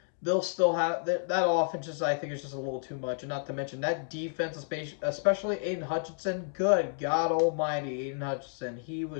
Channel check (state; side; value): silent; right; digital silence